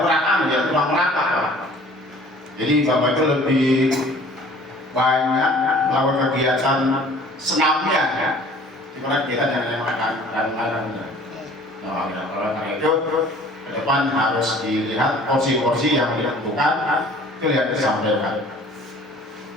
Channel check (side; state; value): both; normal; correlation 0.51